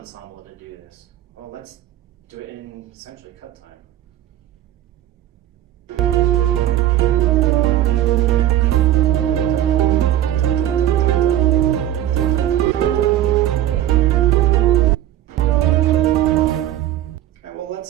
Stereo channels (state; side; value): quieter; left; 12.7 dB